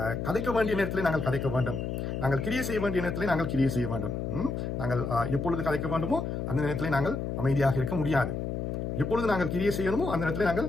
கதைக்க வேண்டிய நேரத்தில் நாங்கள் கதைக்க வேண்டும், நாங்கள் கிரியை செய்ய வேண்டிய நேரத்தில் நாங்கள் கிரியை செய்ய வேண்டும். நாங்கள் எப்பொழுது கதைக்க வேண்டுமோ அந்த நேரத்தில் நாங்கள் அமைதியாக இருக்க முடியாது. எப்பொழுது நாங்கள் கிரியை செய்யணுமோ அந்த நேரத்தில் நாங்கள்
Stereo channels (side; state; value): left; noise; hum, 3 dB below the sound